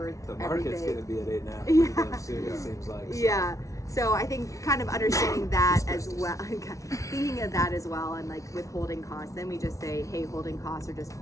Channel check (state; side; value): late; right; 0.16 ms